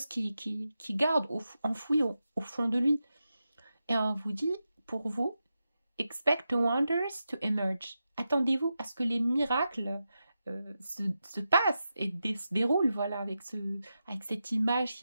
qui garde enfouies au fond de lui. Et on vous dit, pour vous, expect the wonders to emerge. Attendez-vous à ce que les miracles se passent et se déroulent, voilà, avec cette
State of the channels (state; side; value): inverted; both; correlation -0.89